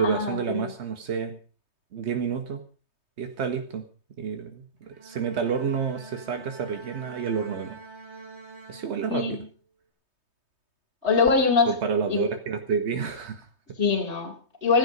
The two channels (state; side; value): late; left; 3.2 ms